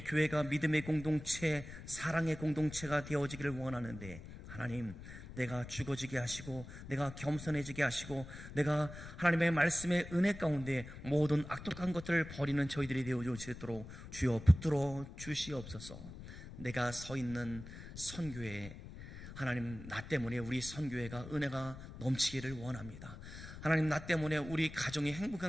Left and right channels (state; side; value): noise; left; rumble, 13 dB below the sound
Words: 교회가 믿음의 공동체, 사랑의 공동체가 되어지기를 원하는데 하나님, 내가 죽어지게 하시고 내가 겸손해지게 하시고 내가 하나님의 말씀의 은혜 가운데 모든 악독한 것들을 버리는 저희들이 되어 주시도록 주여 붙들어 주시옵소서. 내가 서 있는 선교회, 하나님, 나 때문에 우리 선교회가 은혜가 넘치기를 원합니다. 하나님, 나 때문에 우리 가정이